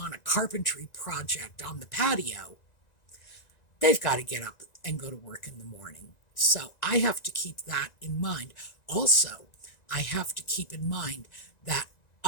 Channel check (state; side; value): late; right; 1.9 ms